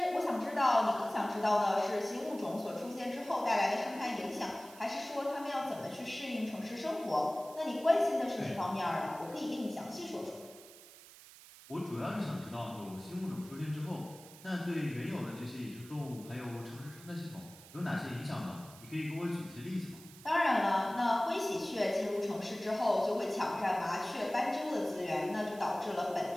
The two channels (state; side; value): noise; right; hiss, 19 dB below the sound